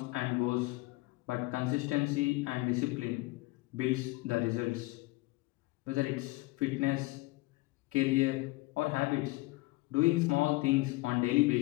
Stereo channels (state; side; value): quieter; right; 22.0 dB